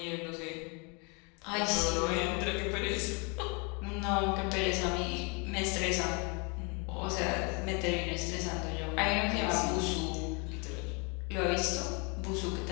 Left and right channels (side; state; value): right; quieter; 32.5 dB